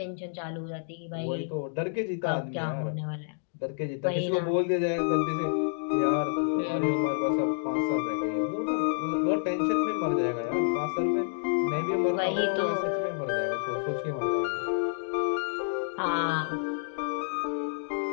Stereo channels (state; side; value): silent; right; digital silence